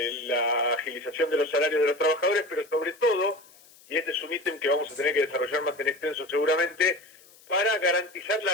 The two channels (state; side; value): noise; left; hiss, 26 dB below the sound